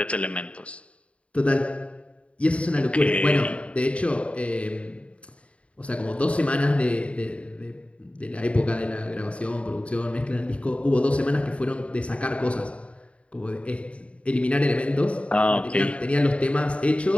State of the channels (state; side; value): late; right; 0.062 ms